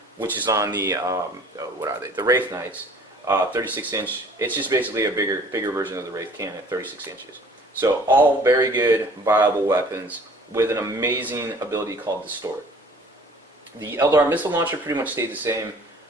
which is on the what are they? The Wraith Knights. 36-inch. It's just basically a bigger version of the Wraith cannon at 36 inches. So all very good, viable weapons with an amazing ability called Distort. The Eldar missile launcher pretty much stayed the same.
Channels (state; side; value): normal; both; correlation 0.51